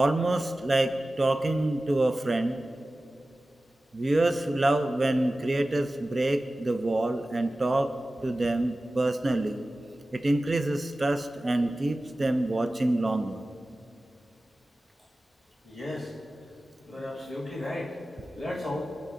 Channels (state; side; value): normal; both; correlation 0.96